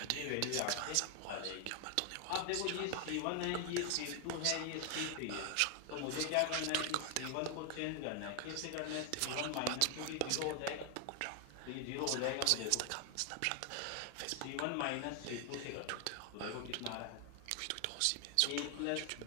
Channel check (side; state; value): both; different; correlation 0.00